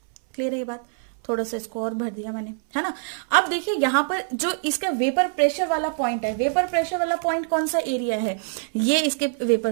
क्लियर है ये बात। थोड़ा सा इसको और भर दिया मैंने, है ना। अब देखिए यहां पर जो इसका वेपर प्रेशर वाला पॉइंट है, वेपर प्रेशर वाला पॉइंट कौन सा एरिया है, ये इसके वेपर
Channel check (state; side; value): silent; left; 62 dB below the other